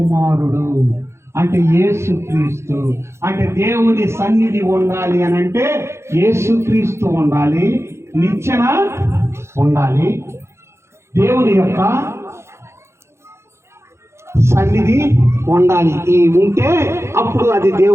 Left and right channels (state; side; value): late; left; 0.13 ms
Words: అంటే యేసుక్రీస్తు. అంటే దేవుని సన్నిధి ఉండాలి అనంటే యేసుక్రీస్తు ఉండాలి, నిచ్చెన ఉండాలి, దేవుని యొక్క సన్నిధి ఉండాలి. ఈ ఉంటే అప్పుడు అది